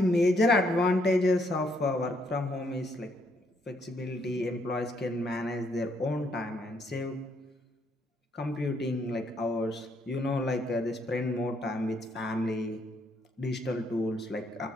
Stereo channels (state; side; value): normal; both; correlation 0.72